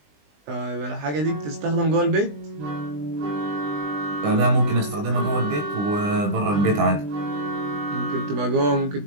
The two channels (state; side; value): late; left; 20 ms